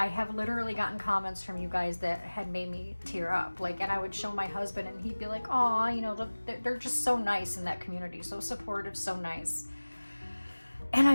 literally gotten comments from you guys that had made me tear up. Like, and I would show my husband and he'd be like, "Aw, you know, they're just so nice in that community, so supportive, so nice." And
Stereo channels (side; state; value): both; inverted; correlation -1.00